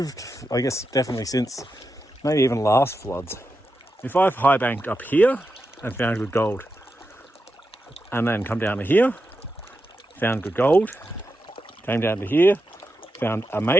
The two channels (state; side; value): normal; both; correlation 0.88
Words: I guess definitely since maybe even last floods. If I've high banked up here and found good gold, and then come down to here, found good gold, came down to here, found